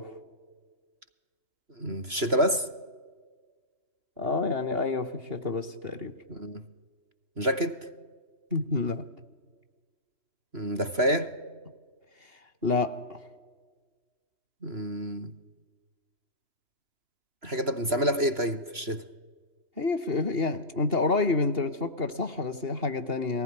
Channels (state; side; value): late; left; 3.0 ms